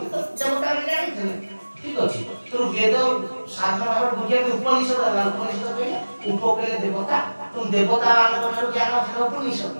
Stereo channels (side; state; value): both; inverted; correlation -1.00